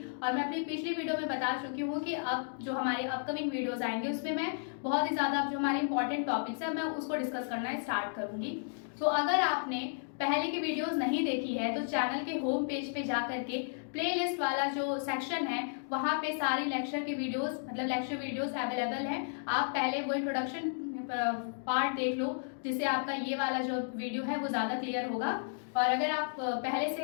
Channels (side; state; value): right; silent; digital silence